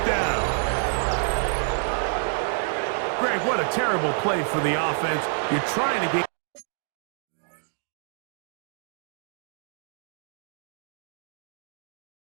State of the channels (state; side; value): silent; left; digital silence